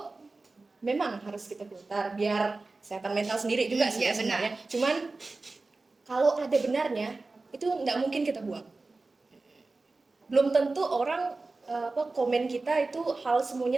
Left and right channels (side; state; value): left; quieter; 3.5 dB